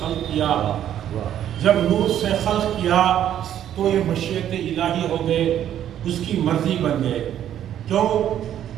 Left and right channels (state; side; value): quieter; left; 10.8 dB